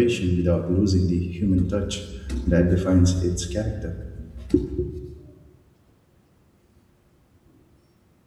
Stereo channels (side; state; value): both; identical; correlation 1.00